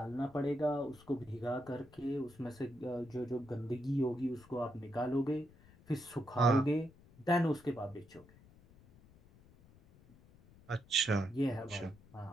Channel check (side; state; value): left; noise; rumble, 24 dB below the sound